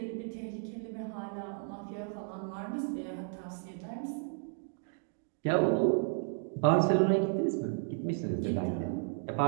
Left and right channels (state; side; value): silent; left; 55 dB below the other